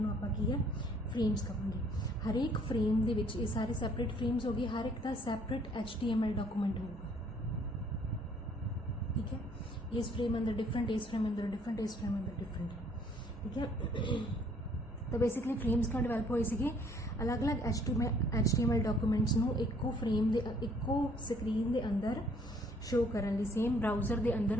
ਆਪਾਂ ਕੀ ਹੈ, ਫਰੇਮਸ ਕਹਾਂਗੇ। ਹਰੇਕ ਫਰੇਮ ਦੇ ਵਿੱਚ ਇਹ ਸਾਰੇ ਸੈਪਰੇਟ ਫਰੇਮਸ ਹੋ ਗਏ, ਹਰ ਇੱਕ ਦਾ ਸੈਪਰੇਟ HTML ਡਾਕੂਮੈਂਟ ਹੋਊਗਾ, ठीक है। इस फ्रेम अंदर डिफरेंट, इस फ्रेम अंदर डिफरेंट, इस फ्रेम अंदर डिफरेंट, ठीक है। तो बेसिकली फ्रेम्स क्यों डिवेलप होए सी, अलग अलग HTML डॉक्यूमेंट्स नू इक्को फ्रेम दे इक्को स्क्रीन दे अंदर शो करन लई, सेम ब्राउज़र दे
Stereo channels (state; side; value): normal; both; correlation 0.61